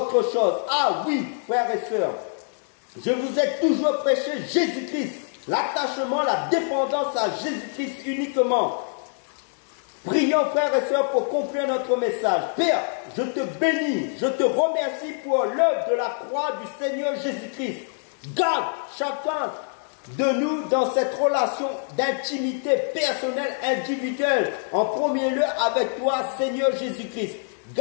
chose. Ah oui, frères et sœurs, je vous ai toujours prêché Jésus-Christ. L'attachement, la dépendance à Jésus-Christ uniquement. Prions, frères et sœurs, pour conclure notre message. Père, je te bénis, je te remercie pour l'œuvre de la croix du Seigneur Jésus-Christ. Garde chacun de nous dans cette relation d'intimité personnelle, individuelle, en premier lieu avec toi, Seigneur Jésus-Christ.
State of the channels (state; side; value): silent; right; digital silence